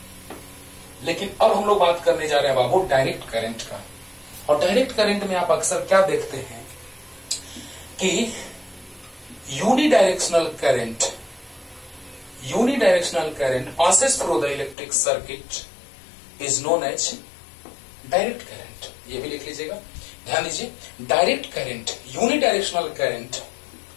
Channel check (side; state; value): right; drops out; at 14.8 s